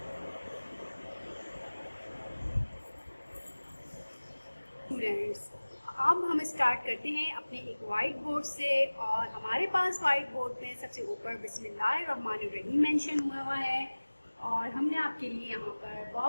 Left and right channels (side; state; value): both; inverted; correlation -1.00